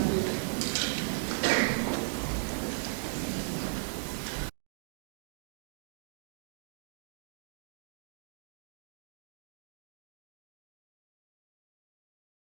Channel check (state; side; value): silent; left; digital silence